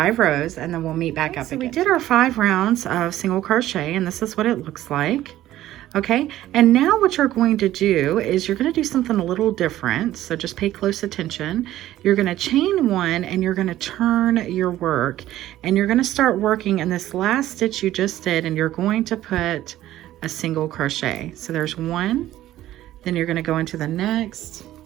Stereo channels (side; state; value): left; quieter; 14.0 dB